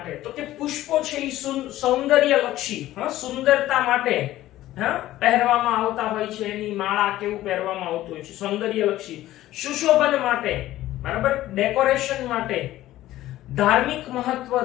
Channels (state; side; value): quieter; right; 14.9 dB